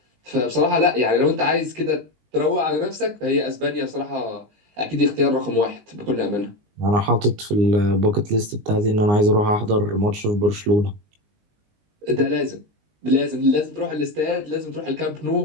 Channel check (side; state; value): left; late; 19 ms